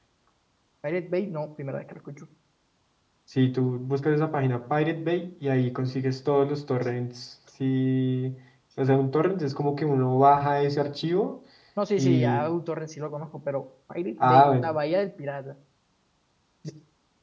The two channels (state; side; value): identical; both; correlation 1.00